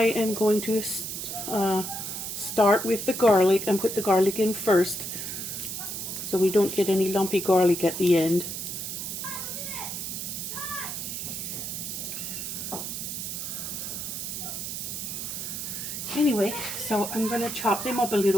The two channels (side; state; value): right; noise; hiss, 5 dB below the sound